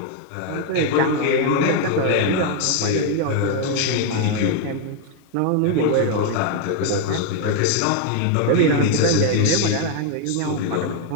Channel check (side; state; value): both; different; correlation 0.01